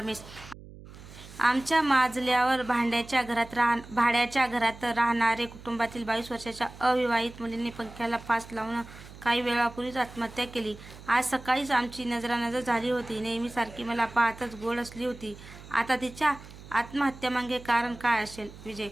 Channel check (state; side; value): noise; right; hum, 17 dB below the sound